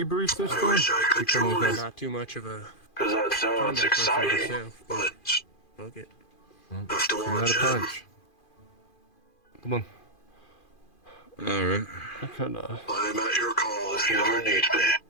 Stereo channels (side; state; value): right; late; 2.4 ms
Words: this I time? wish I could join. Not too much of a Because that sounds combat person exciting, myself, but fuck it. I have to Give me watch that a him. punch. Come on. Alright. I could, I'm at your call if you ever need me.